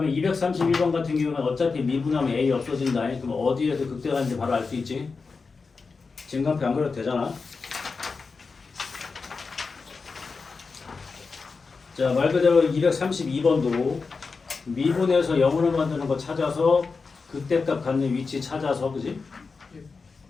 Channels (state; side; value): quieter; right; 4.6 dB